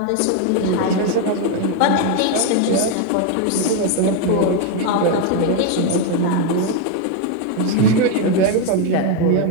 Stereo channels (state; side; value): different; both; correlation 0.01